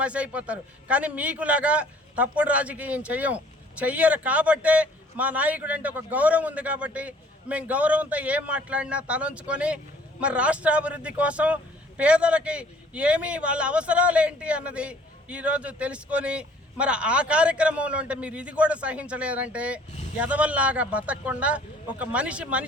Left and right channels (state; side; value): normal; both; correlation 0.55